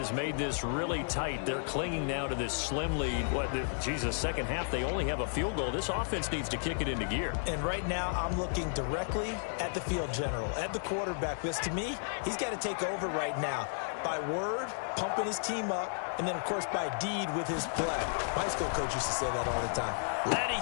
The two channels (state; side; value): silent; right; digital silence